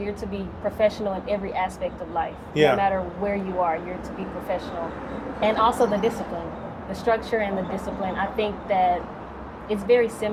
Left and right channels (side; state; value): both; identical; correlation 1.00